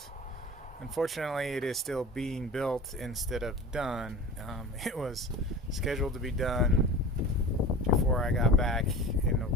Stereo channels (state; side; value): normal; both; correlation 0.35